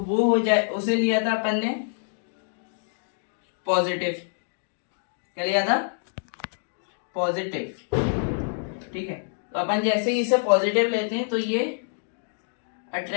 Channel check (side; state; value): right; silent; digital silence